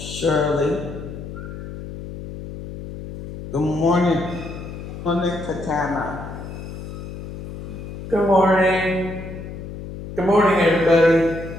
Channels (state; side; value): noise; left; hum, 10 dB below the sound